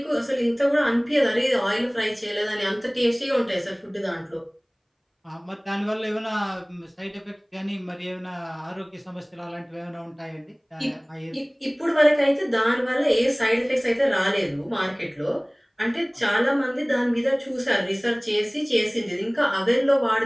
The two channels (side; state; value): both; identical; correlation 1.00